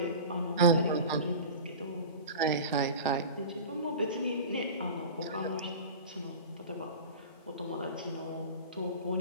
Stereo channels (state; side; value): inverted; both; correlation -0.34